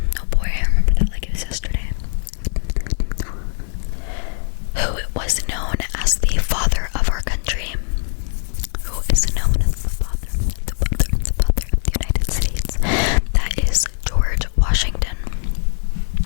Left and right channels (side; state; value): right; silent; digital silence